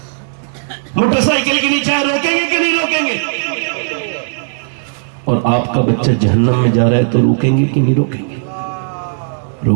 موٹر سائیکل کے نیچے آئے روکیں گے کہ نہیں روکیں گے؟ اور آپ کا بچہ جہنم میں جا رہا ہے تو روکیں گے کہ نہیں روکیں گے؟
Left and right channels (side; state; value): left; silent; digital silence